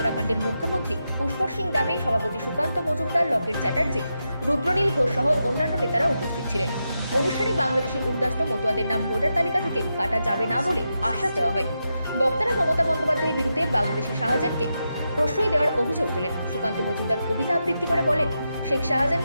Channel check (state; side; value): inverted; both; correlation -0.87